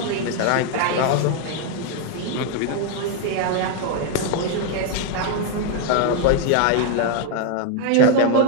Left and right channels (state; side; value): different; both; correlation 0.00